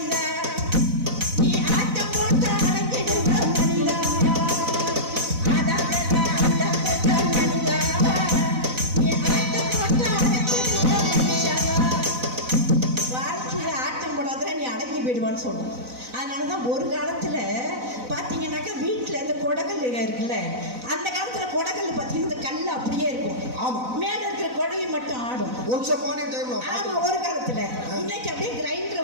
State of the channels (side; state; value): left; late; 4.0 ms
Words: நீ ஆட்டம் போட்டு அடங்கிடுங்க மனிதா, ஆடாதடா ஆடாதடா மனிதா, நீ ஆட்டம் போட்டு அடங்கிடுங்க மனுஷா. வாழ்க்கையில ஆட்டம் போடாத நீ அடங்கி போயிடுவான்னு சொல்றோம். அதனாலதான் ஒரு காலத்துல பாத்தீங்கன்னாக்கா வீட்டுல இந்த கொடகல் இருக்குல்ல, அந்த காலத்துல கொடகல் பாத்தீங்கன்னா இந்த கல் அப்படியே இருக்கும். ஆமா, மேல இருக்கிற கொடவை மட்டும் ஆடும். ஆமா, ஒரு காலத்துல. இன்னைக்கு அப்படியே